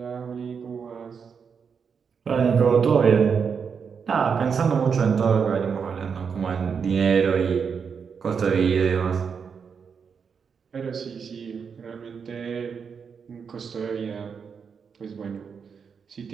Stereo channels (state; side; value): quieter; left; 6.3 dB